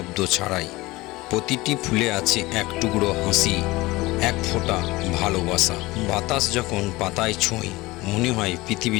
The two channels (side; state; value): right; quieter; 20.7 dB